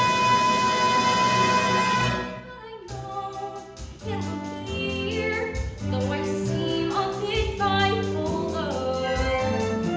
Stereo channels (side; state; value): both; identical; correlation 1.00